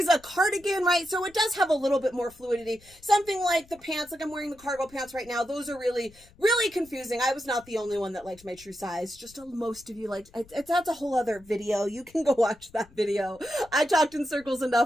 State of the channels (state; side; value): noise; left; rumble, 26 dB below the sound